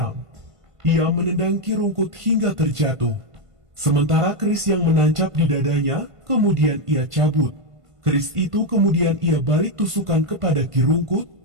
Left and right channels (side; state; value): left; late; 1.5 ms